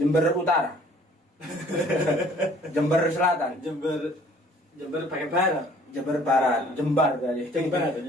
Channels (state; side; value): normal; both; correlation 0.56